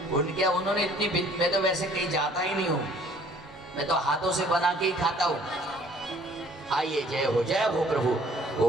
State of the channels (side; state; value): both; normal; correlation 0.57